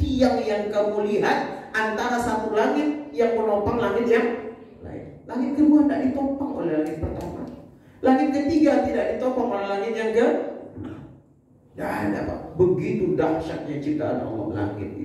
yang kamu lihat antara satu langit yang menopang langit yang lain. Langit kedua tidak ditopang oleh langit pertama. Langit ketiga tidak ditopang oleh langit yang ke. Tidak ada Pak. Begitu dahsyatnya ciptaan Allah langit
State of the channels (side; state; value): both; identical; correlation 1.00